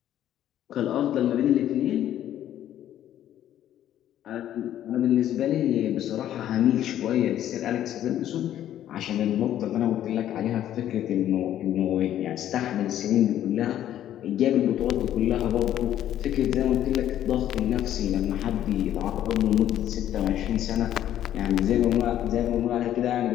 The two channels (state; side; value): quieter; right; 11.6 dB